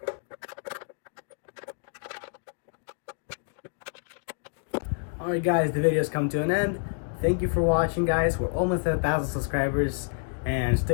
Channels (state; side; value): silent; right; digital silence